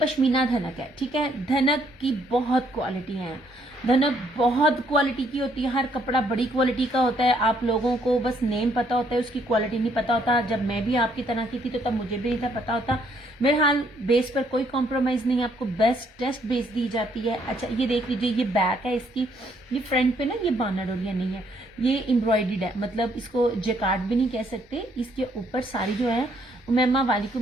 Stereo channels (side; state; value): both; normal; correlation 0.69